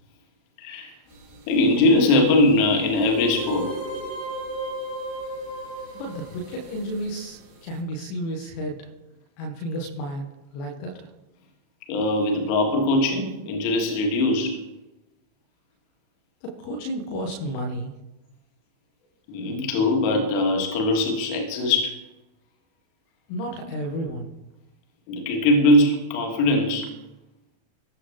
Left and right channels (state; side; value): late; right; 37 ms